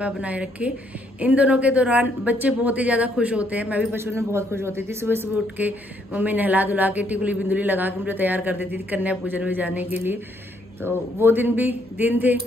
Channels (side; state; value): both; normal; correlation 0.70